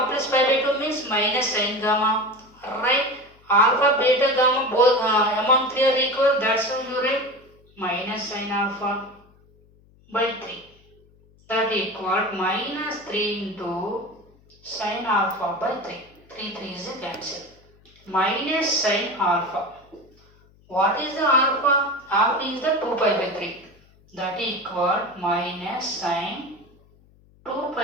plus pi by 2 means minus sin gamma. Right? Alpha, beta, gamma both among 3 are equal. That's why you write minus sin alpha by 3. That equal minus 3 into sin alpha by 3. 3 is a cancel. Minus sin alpha. What is the alpha? Alpha is the 2 pi by 3. That equal minus sin 2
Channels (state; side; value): noise; left; hum, 29 dB below the sound